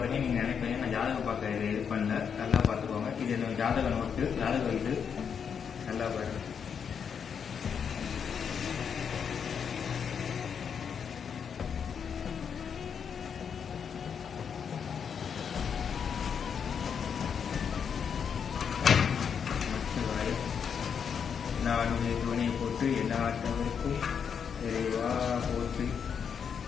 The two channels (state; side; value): quieter; right; 7.1 dB